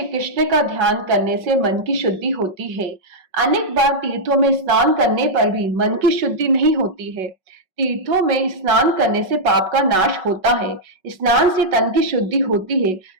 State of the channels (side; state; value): left; late; 5.4 ms